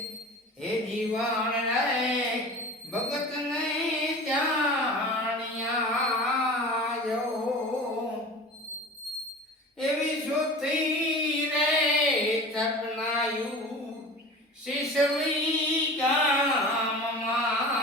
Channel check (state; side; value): normal; both; correlation 0.36